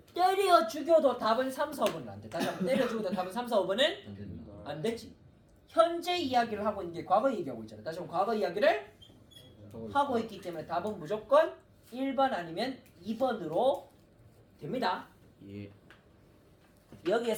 때려 죽여도 답은 3, 4번은 안 돼. 다시 한번 때려 죽여도 답은 3, 4, 5번은 안 된다. 안 되지. 현재 이야기를 하고 있는 게 과거 얘기하고 있잖아. 다시 한번 과거 이야기를 하고 있기 때문에 답은 무조건 1번 아니면 2번으로 됩니다. 예.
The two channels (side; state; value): both; identical; correlation 1.00